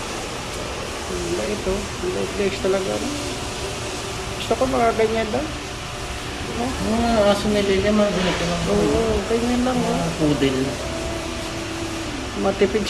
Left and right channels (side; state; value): both; identical; correlation 1.00